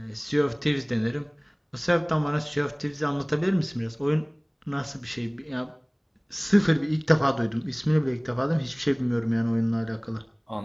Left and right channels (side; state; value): both; identical; correlation 1.00